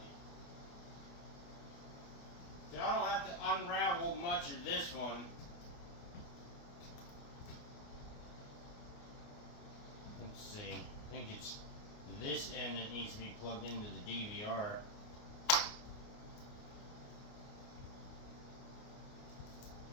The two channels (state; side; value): late; right; 28 ms